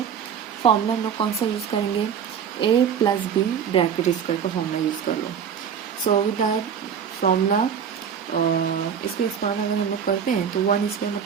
फॉर्मूला हम लोग कौन सा यूज़ करेंगे? A plus B bracket square का फॉर्मूला यूज़ कर लो. सो विद दैट फॉर्मूला इसको एक्सपांड अगर हम लोग करते हैं तो 1 स्क्वायर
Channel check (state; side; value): quieter; left; 7.6 dB